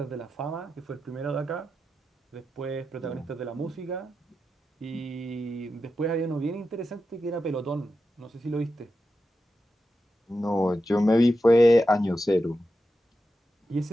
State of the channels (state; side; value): normal; both; correlation 0.89